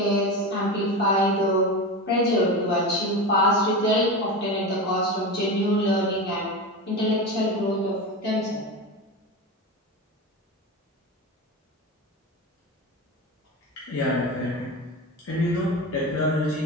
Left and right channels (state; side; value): normal; both; correlation 0.24